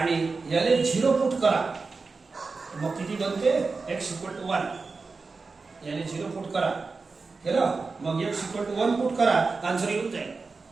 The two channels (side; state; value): left; quieter; 4.2 dB